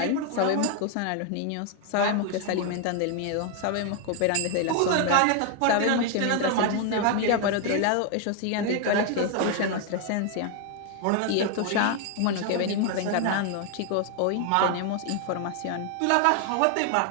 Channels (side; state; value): both; different; correlation 0.00